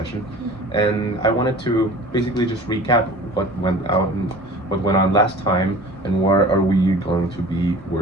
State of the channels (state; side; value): normal; both; correlation 0.42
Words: and I wanted to basically just recap what went out and what went on last time, and where are we going to be